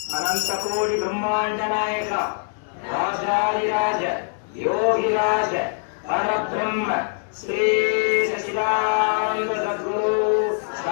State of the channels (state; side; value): silent; right; digital silence